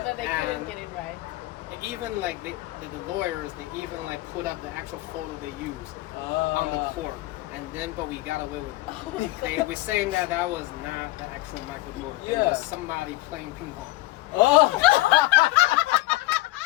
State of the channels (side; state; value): right; quieter; 19.0 dB